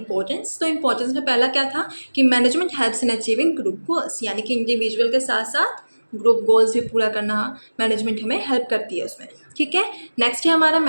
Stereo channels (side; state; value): both; inverted; correlation -1.00